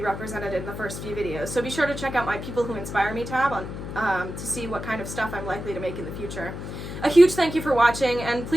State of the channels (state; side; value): noise; left; hum, 8 dB below the sound